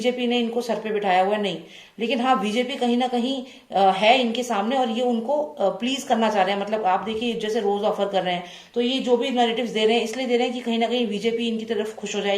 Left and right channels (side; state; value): both; identical; correlation 1.00